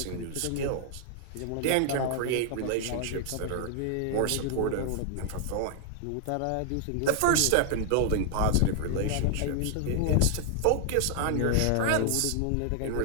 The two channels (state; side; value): different; both; correlation 0.00